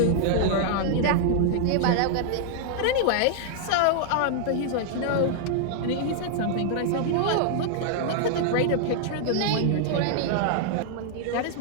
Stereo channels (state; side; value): different; both; correlation 0.00